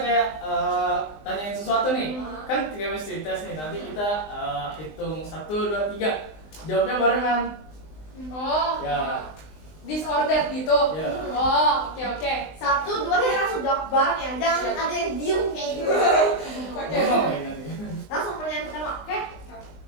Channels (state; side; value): late; right; 19 ms